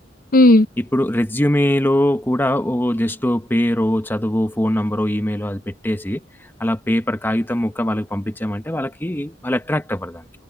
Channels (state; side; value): normal; both; correlation 0.83